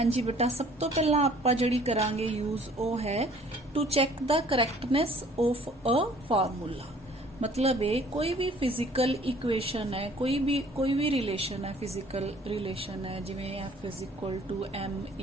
जी बेटा, सब तो पहला आपां जिहड़ी करांगे यूज वो है to check the correctness of a formula. मतलब है कोई भी फिजिकल इक्वेशन है, कोई भी रिलेशन है, फिजिकल रिलेशन है, जिवें F is equal to m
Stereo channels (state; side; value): normal; both; correlation 0.55